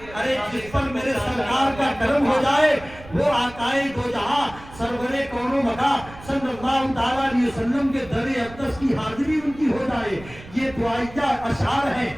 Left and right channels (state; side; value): noise; right; rumble, 18 dB below the sound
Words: ارے جس پر میرے سرکار کا کرم ہو جائے وہ آقائے دو جہاں سرور کون و مکان صلی اللہ تعالیٰ علیہ وسلم کے در اقدس کی حاضری ان کی ہو جائے. یہ دعائیہ اشعار ہیں.